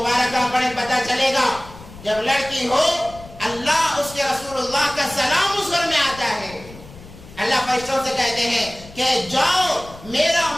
پڑھیں، پتہ چلے گا جب لڑکی ہو اللہ، اس کے رسول اللہ کا سلام اس گھر میں آتا ہے۔ اللہ فرشتوں سے کہتے ہیں کہ جاؤ میرا،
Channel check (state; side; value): noise; left; rumble, 18 dB below the sound